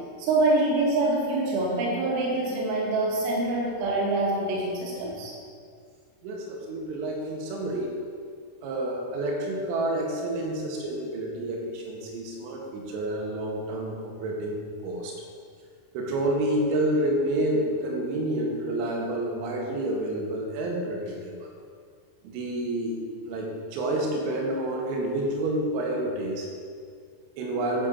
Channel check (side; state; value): left; late; 29 ms